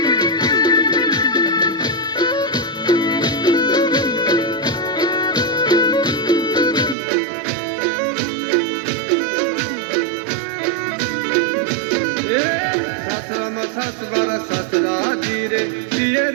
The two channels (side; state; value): left; drops out; at 7.0 s